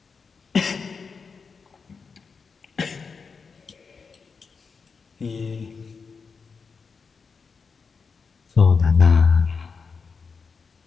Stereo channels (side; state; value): right; quieter; 5.2 dB